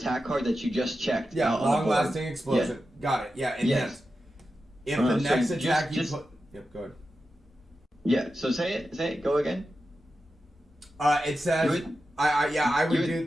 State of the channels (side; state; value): both; normal; correlation 0.91